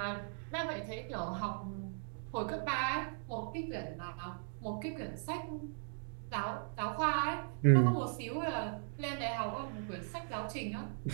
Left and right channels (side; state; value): left; silent; digital silence